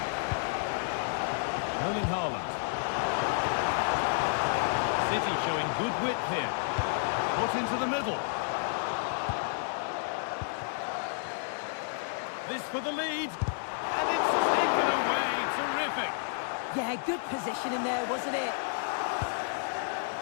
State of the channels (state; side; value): silent; right; digital silence